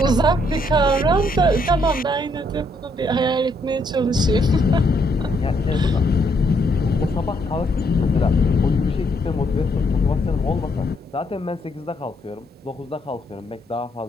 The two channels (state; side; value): normal; both; correlation 0.73